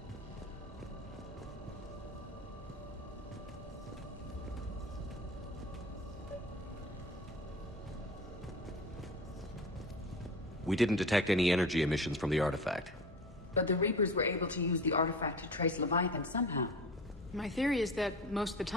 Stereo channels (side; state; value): both; normal; correlation 0.34